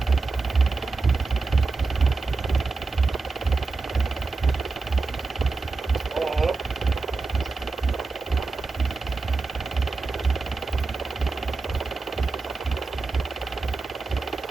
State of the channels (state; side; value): quieter; left; 3.9 dB